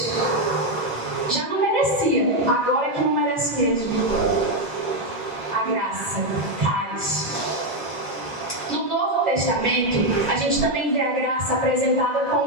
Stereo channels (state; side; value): normal; both; correlation 0.05